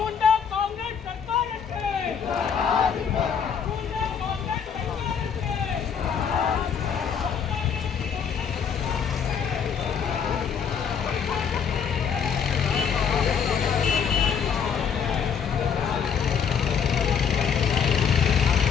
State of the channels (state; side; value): quieter; right; 7.1 dB